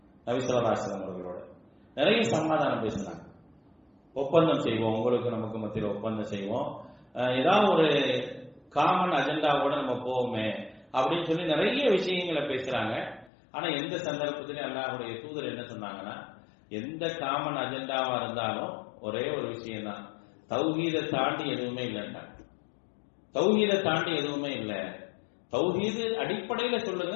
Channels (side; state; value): right; drops out; at 13.3 s